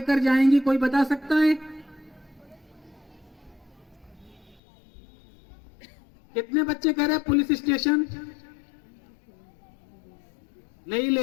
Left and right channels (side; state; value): right; drops out; at 4.6 s